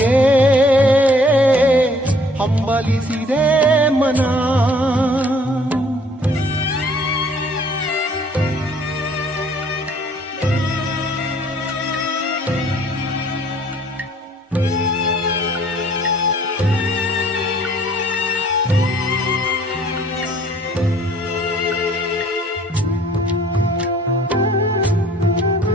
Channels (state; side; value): normal; both; correlation 0.58